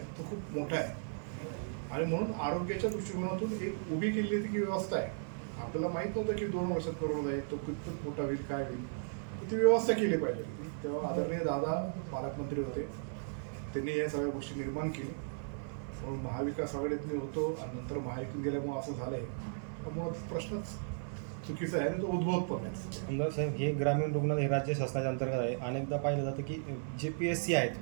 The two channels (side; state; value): left; silent; digital silence